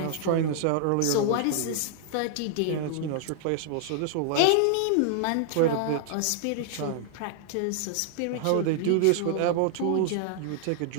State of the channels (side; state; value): both; different; correlation 0.00